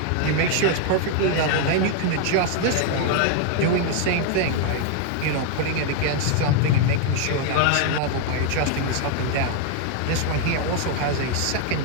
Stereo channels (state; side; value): different; both; correlation 0.00